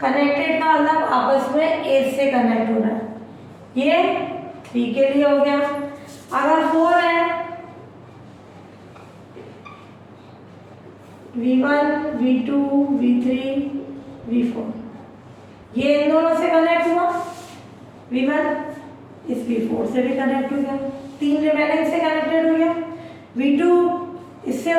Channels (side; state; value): both; identical; correlation 1.00